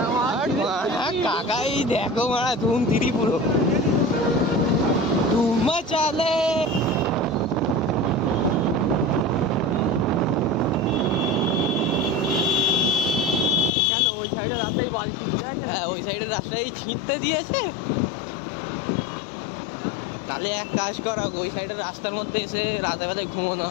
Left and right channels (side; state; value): right; drops out; at 13.7 s